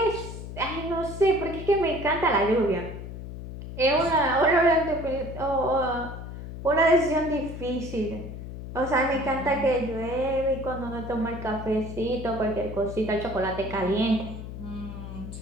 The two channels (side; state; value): left; noise; hum, 10 dB below the sound